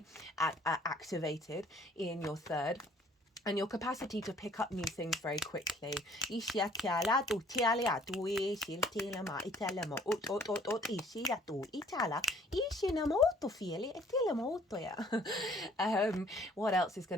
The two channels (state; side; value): normal; both; correlation 0.57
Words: activated in your third, and your capacity to pick up new things very quickly. What else is